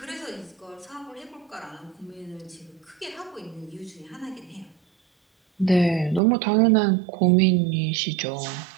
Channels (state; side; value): drops out; left; at 6.2 s